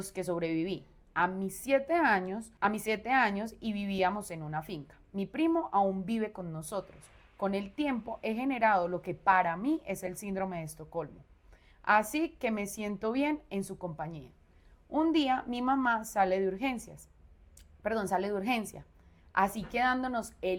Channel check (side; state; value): both; identical; correlation 1.00